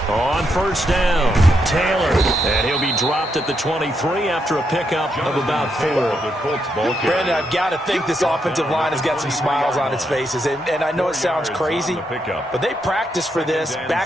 On first down, Taylor. And he'll be dropped at the 23 after a pickup of about 4. Brandon, I've got to think this offensive line has got some smiles on its faces. And I know it sounds crazy, but they practiced for this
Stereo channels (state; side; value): normal; both; correlation 0.80